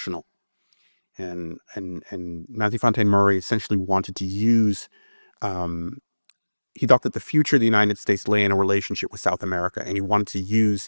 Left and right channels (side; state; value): both; inverted; correlation -1.00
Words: And Matthew Fontaine Maury essentially wanted to use, he thought that the future of the United States lay in a relationship with South America, and he wanted to